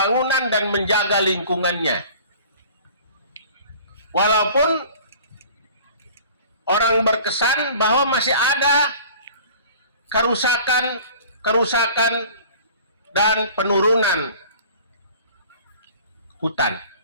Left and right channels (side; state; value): both; inverted; correlation -0.46